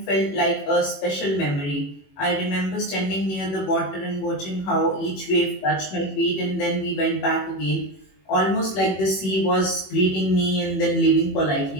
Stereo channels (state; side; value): late; right; 21 ms